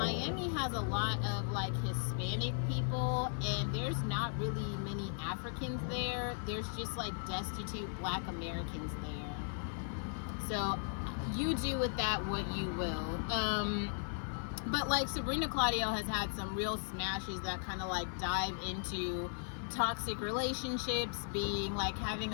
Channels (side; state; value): right; silent; 53 dB below the other